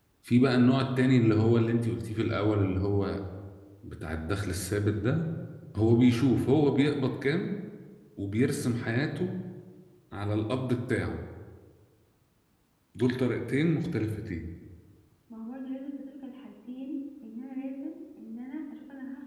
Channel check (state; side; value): identical; both; correlation 1.00